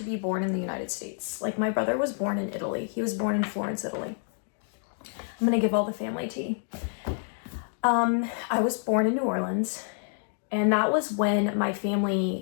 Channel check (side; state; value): right; silent; digital silence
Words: be born in the United States. Like my brother was born in Italy. He was born in Florence, Italy. I'm gonna give all the family tea. I was born in New Orleans, and that was when my